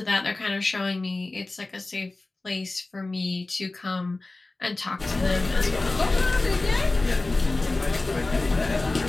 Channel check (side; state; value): right; quieter; 3.2 dB